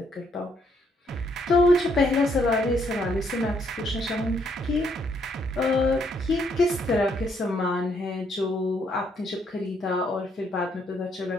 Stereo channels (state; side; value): normal; both; correlation 0.72